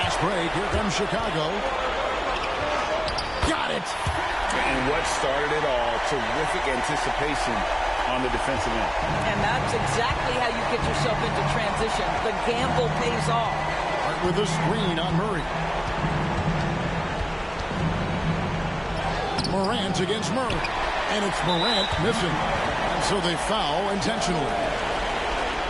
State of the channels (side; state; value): both; identical; correlation 1.00